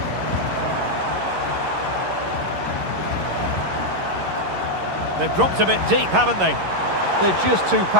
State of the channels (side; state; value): left; late; 11 ms